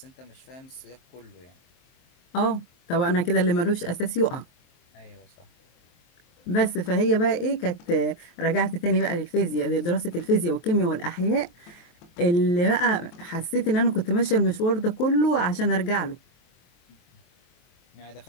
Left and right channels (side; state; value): right; late; 23 ms